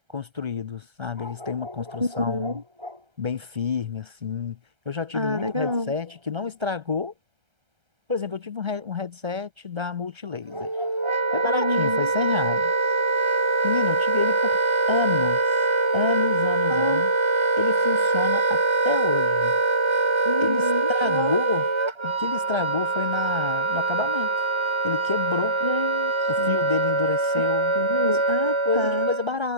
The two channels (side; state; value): left; late; 1.3 ms